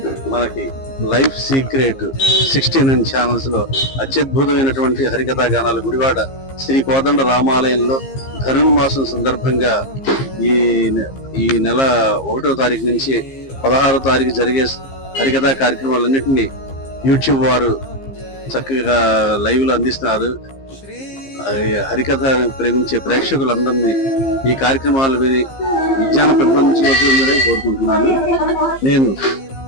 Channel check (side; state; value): right; late; 15 ms